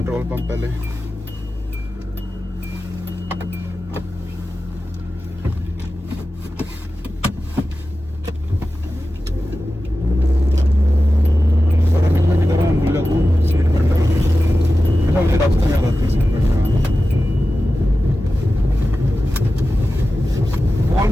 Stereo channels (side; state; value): both; normal; correlation 0.94